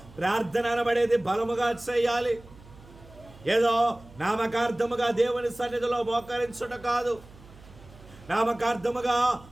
ప్రార్థన అనబడేది బలముగా చేయాలి. ఏదో నామకార్థముగా దేవుని సన్నిధిలో మోకరించుట కాదు. నామకార్థముగా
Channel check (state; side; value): noise; right; hum, 22 dB below the sound